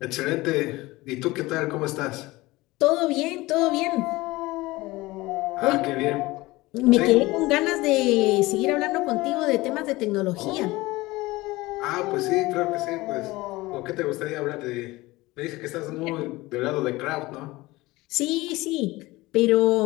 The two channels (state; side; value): quieter; right; 20.3 dB